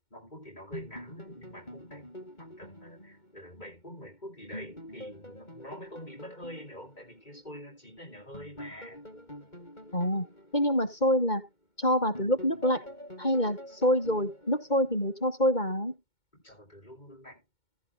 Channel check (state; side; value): late; right; 2.2 ms